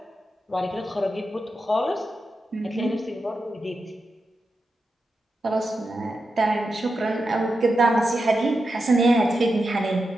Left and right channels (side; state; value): both; normal; correlation 0.89